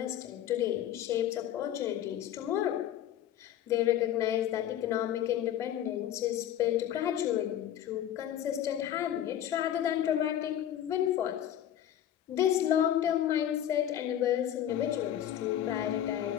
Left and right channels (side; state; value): right; quieter; 11.1 dB